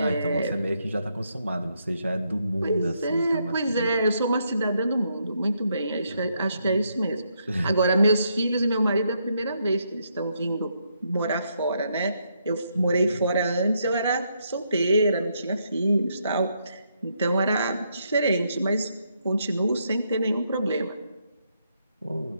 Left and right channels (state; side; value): inverted; both; correlation -0.77